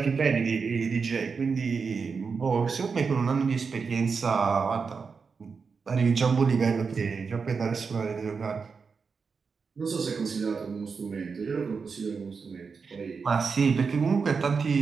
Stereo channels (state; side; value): quieter; left; 5.3 dB